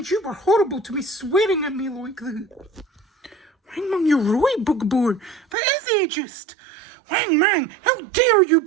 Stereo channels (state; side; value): drops out; left; at 5.6 s